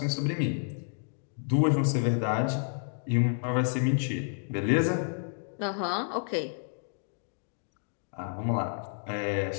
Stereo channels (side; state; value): right; silent; digital silence